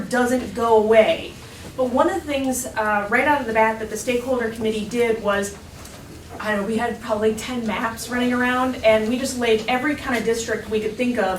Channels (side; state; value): both; identical; correlation 1.00